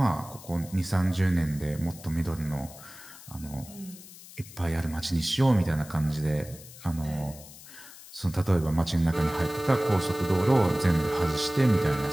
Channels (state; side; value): noise; left; hiss, 18 dB below the sound